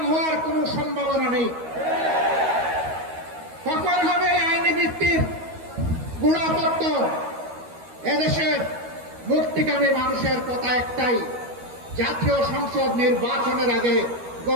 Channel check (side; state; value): left; late; 13 ms